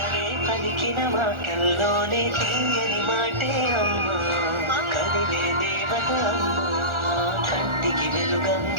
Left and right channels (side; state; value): left; late; 1.4 ms